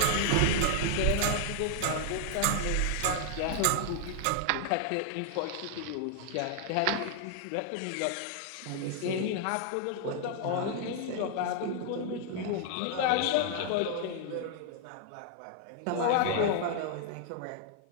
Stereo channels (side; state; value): both; different; correlation 0.00